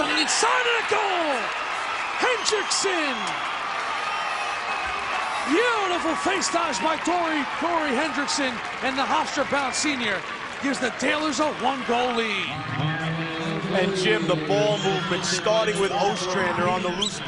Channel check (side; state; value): both; identical; correlation 1.00